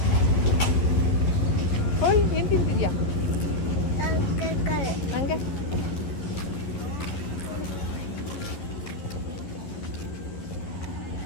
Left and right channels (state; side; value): late; right; 11 ms